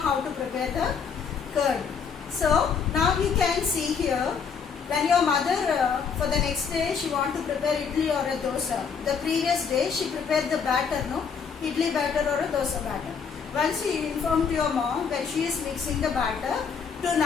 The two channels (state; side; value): quieter; right; 6.2 dB